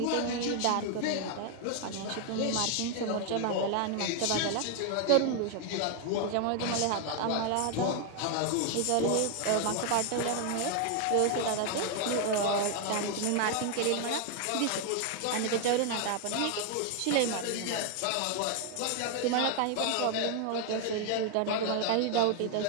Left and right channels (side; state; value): both; different; correlation 0.00